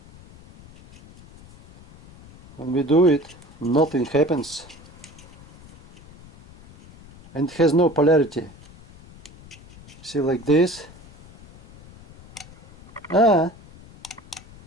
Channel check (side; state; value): left; noise; rumble, 22 dB below the sound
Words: When we do it, nothing happens. And it has no polarity. See, like this.